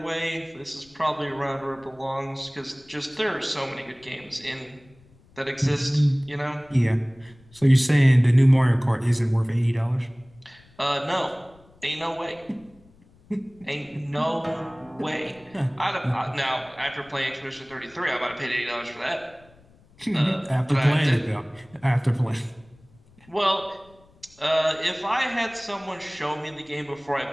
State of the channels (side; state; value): left; noise; rumble, 28 dB below the sound